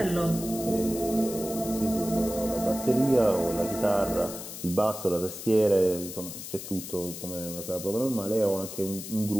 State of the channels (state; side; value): noise; left; hiss, 10 dB below the sound